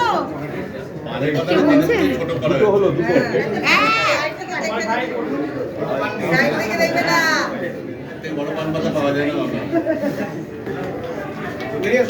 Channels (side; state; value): both; identical; correlation 1.00